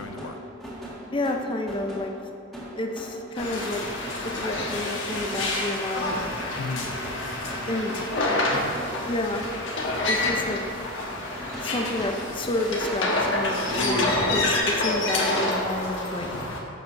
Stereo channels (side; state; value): both; normal; correlation 0.18